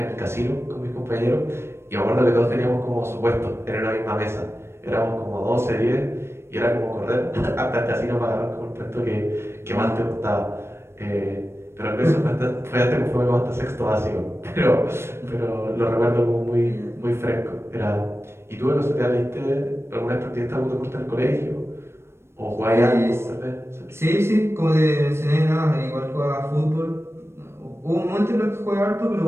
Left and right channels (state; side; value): late; left; 0.12 ms